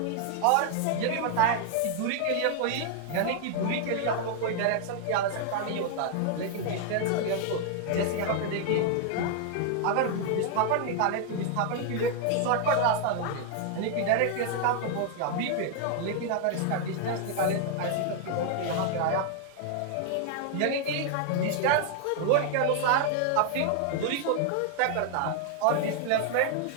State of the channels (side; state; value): both; different; correlation 0.00